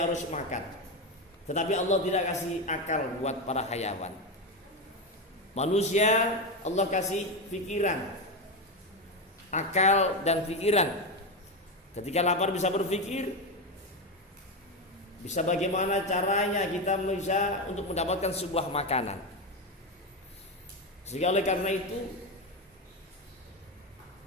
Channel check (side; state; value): both; normal; correlation 0.13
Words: harus makan. Tetapi Allah tidak kasih akal buat para hayawan. Manusia Allah kasih pikiran, akal dan pikiran. Ketika lapar bisa berpikir, bisa bagaimana caranya kita bisa untuk mendapatkan sebuah makanan. Sehingga oleh karena itu